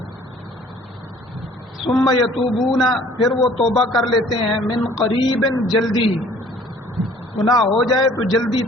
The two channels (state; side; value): normal; both; correlation 0.54